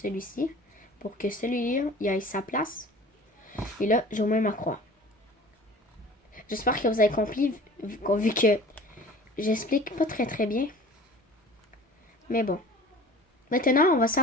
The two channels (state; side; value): normal; both; correlation 0.44